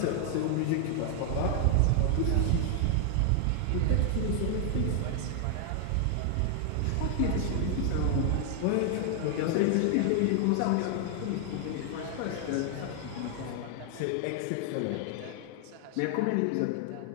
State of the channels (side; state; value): both; different; correlation 0.00